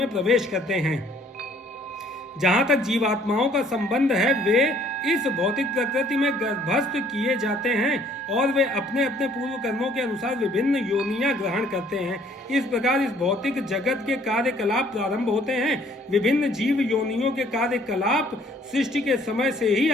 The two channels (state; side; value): normal; both; correlation 0.60